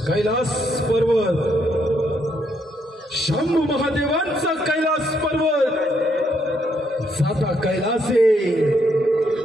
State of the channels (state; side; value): normal; both; correlation 0.74